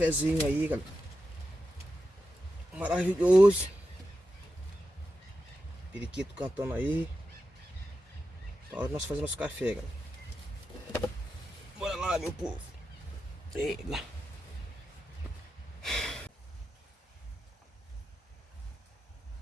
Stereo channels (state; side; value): normal; both; correlation 0.89